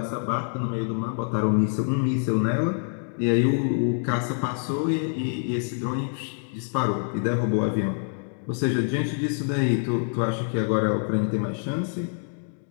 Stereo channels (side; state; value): right; silent; 60 dB below the other